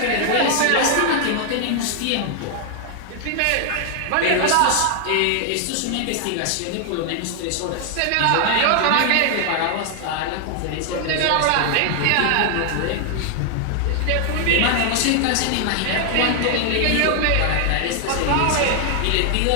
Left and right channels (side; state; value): both; different; correlation 0.00